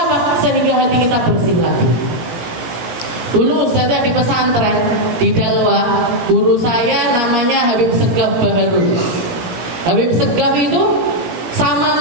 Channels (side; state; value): left; late; 17 ms